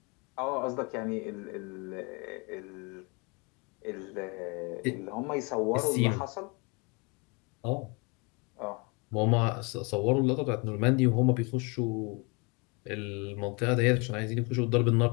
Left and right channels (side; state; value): right; quieter; 30.4 dB